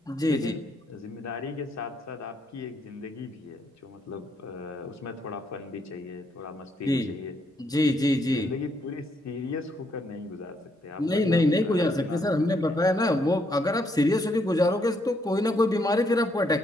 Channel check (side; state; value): both; normal; correlation 0.74